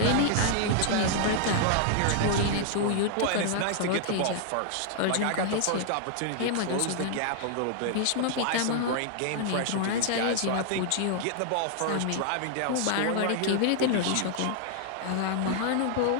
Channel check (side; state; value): both; different; correlation 0.00